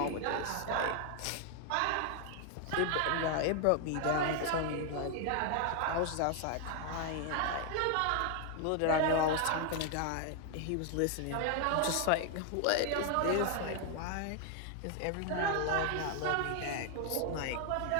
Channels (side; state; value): both; different; correlation 0.00